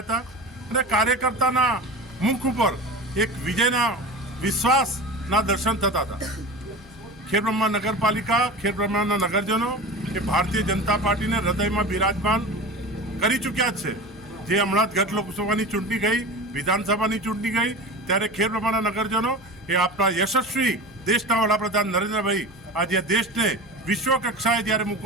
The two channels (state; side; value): normal; both; correlation 0.31